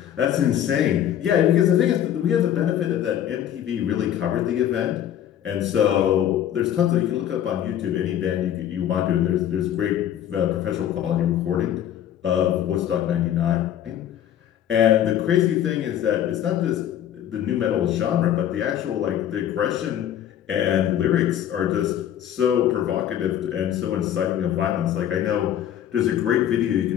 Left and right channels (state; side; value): quieter; right; 10.7 dB